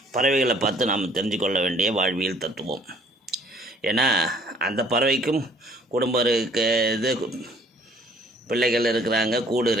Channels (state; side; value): normal; both; correlation 0.59